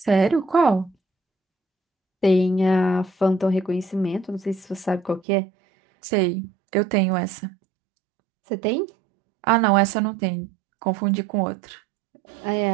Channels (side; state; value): left; drops out; at 5.2 s